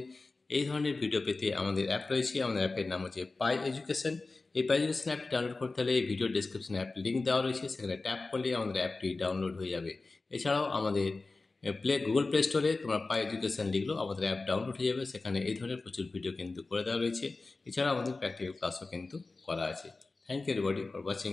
এই ধরনের ভিডিও পেতে আমাদের অ্যাপ রয়েছে। আমাদের অ্যাপের নাম হচ্ছে পাই এডুকেশন। এই পাই এডুকেশন অ্যাপটি ডাউনলোড করতে হলে এই ভিডিও ডেসক্রিপশনে অ্যাপ লিঙ্ক দেওয়া রয়েছে, সেখানে ট্যাপ করলে আমাদের অ্যাপটি ডাউনলোড হয়ে যাবে। এছাড়াও আমাদের গুগল প্লে স্টোরে তোমরা পাই এডুকেশন লিখলেও আমাদের অ্যাপ ডাউনলোড হয়ে যাবে। সেখানে এই ধরনের প্রচুর ভিডিও কিন্তু করে দেওয়া রয়েছে। এছাড়াও আমাদের প্র্যাকটিক্যাল ক্লাসও কিন্তু করা আছে। Thank you everybody for watching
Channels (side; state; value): right; quieter; 3.6 dB